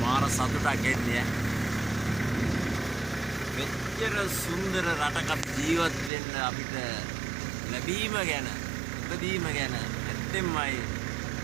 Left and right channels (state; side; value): drops out; left; at 6.1 s